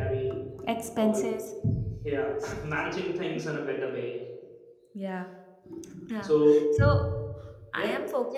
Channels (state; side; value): identical; both; correlation 1.00